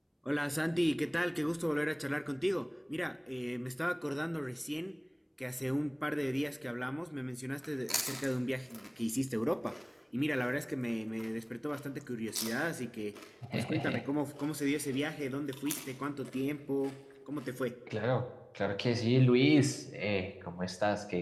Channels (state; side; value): identical; both; correlation 1.00